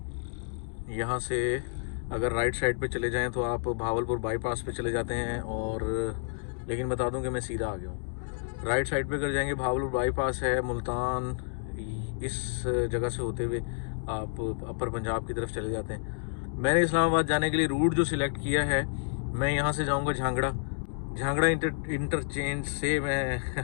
यहाँ से अगर राइट साइड पे चले जाएं तो आप भावलपुर बाईपास पे चले जाते हैं, और लेकिन बता दूं कि मैं सीधा आ गया हूँ। राइट साइड पे कर जाएंगे, भावलपुर बाईपास है, मुल्तान, इस जगह से होते हुए आप अपर पंजाब की तरफ चले जाते हैं। मैंने इस्लामाबाद जाने के लिए रूट जो सिलेक्ट किया है, मैं यहाँ से जाऊँगा झांगड़ा इंटरचेंज से मैं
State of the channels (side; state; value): right; silent; digital silence